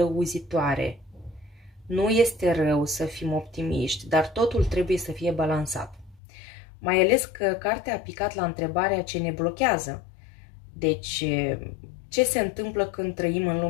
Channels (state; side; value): drops out; right; at 6.2 s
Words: Nu este rău să fim optimiști, dar totul trebuie să fie balansat. Mai ales că cartea a picat la întrebarea ce ne blochează. Deci, ce se întâmplă când trăim în